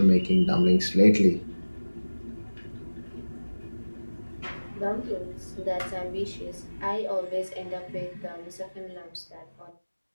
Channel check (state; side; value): inverted; both; correlation -1.00